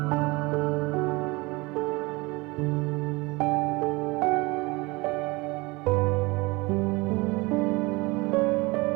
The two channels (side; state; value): left; quieter; 24.2 dB